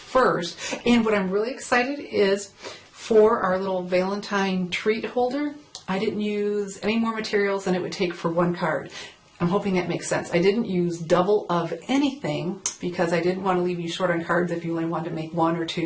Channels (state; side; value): identical; both; correlation 1.00